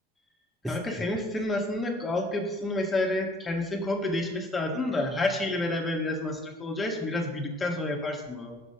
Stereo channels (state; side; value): normal; both; correlation 0.58